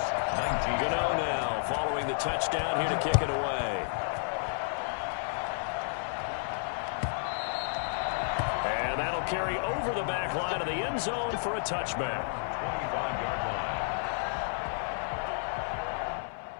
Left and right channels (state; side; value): silent; right; 57 dB below the other